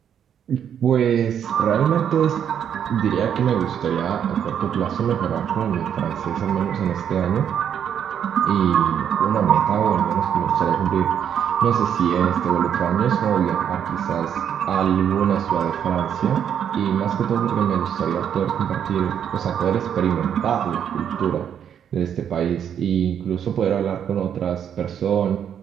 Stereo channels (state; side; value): quieter; left; 8.8 dB